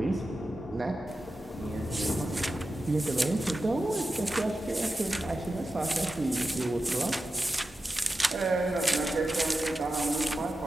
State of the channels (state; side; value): normal; both; correlation 0.92